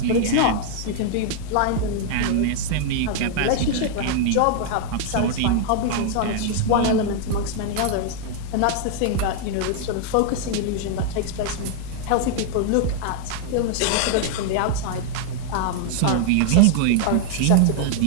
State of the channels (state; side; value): different; both; correlation 0.00